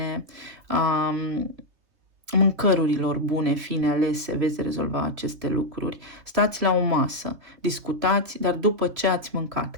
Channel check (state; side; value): late; left; 3.4 ms